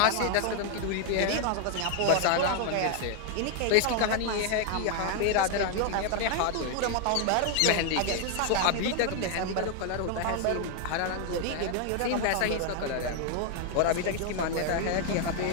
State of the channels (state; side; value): different; both; correlation 0.00